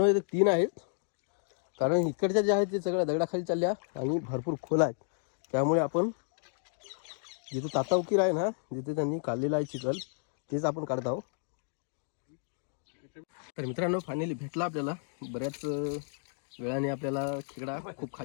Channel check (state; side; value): silent; right; digital silence